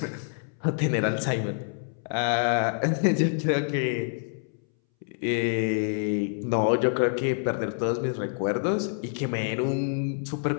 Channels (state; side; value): silent; right; 60 dB below the other